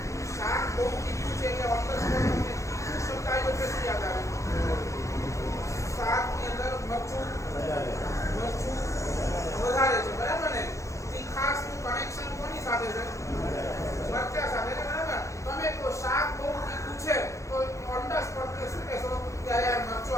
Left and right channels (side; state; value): right; late; 0.15 ms